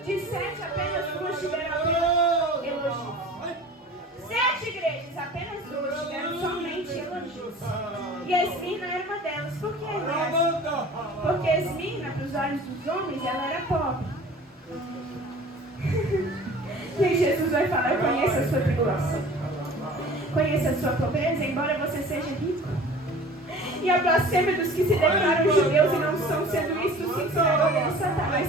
De 7, apenas 2 tiveram elogios. 7 igrejas, apenas 2 tiveram somente elogios. E a Esmirna era uma delas. Por que dessa? Porque a Esmirna, para os olhos dos homens, ela era pobre. E aí Jesus vai falar, eu conheço a sua tribulação, conheço a sua pobreza, embora você seja rico. E a blasfêmia dos que se declaram judeus e não são, sendo isto sim sinagoga de Satanás.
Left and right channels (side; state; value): both; normal; correlation 0.44